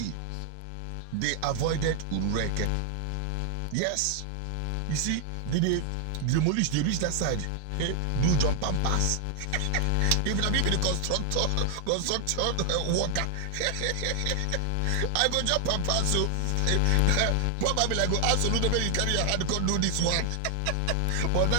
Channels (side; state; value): both; different; correlation 0.00